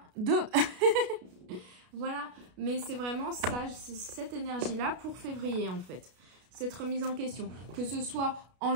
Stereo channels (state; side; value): late; left; 33 ms